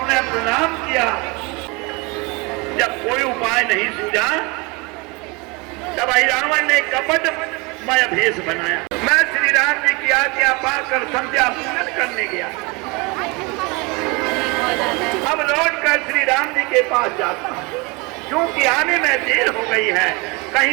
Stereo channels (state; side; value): quieter; left; 27.4 dB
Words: प्रणाम किया। जब कोई उपाय नहीं सूझा तब रावण ने कपटमय भेष बनाया। मैं श्री राम जी की आज्ञा पाकर संध्या पूजन करने गया। अब लौटकर श्री राम जी के पास जाता हूं, क्योंकि आने में देर हो गई है,